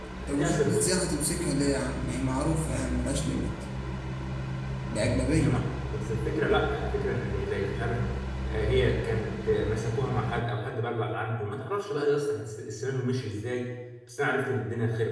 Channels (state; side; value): identical; both; correlation 1.00